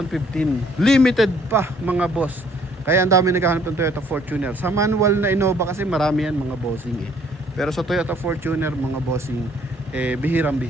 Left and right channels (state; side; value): normal; both; correlation 0.62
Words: Limited pa mga boss. Kaya ang dami naghahanap ng Toyota Fortuner. Sa manual na Innova kasi marami yan mga bossing Pero sa Toyota Fortuner mga bossing,